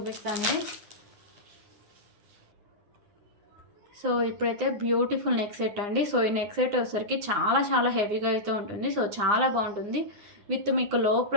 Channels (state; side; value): late; left; 9.7 ms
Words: సో ఇప్పుడైతే బ్యూటిఫుల్ నెక్ సెట్ అండి. సో ఈ నెక్ సెట్ వచ్చేసరికి చాలా హెవీగా అయితే ఉంటుంది. సో చాలా బాగుంటుంది. విత్ మీకు లో